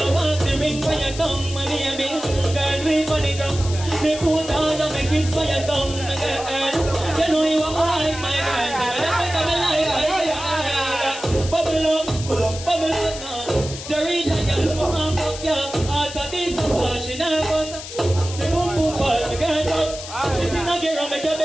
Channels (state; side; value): noise; left; hiss, 11 dB below the sound